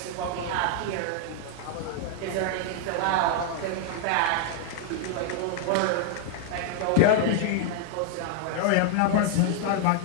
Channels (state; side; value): different; both; correlation 0.00